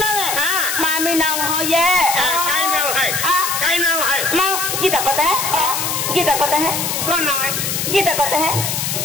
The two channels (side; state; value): left; noise; hiss, 1 dB below the sound